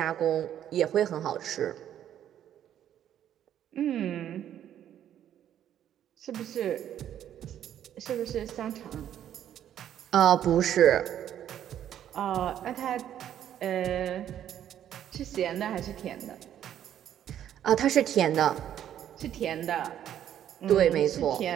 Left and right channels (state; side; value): quieter; left; 10.6 dB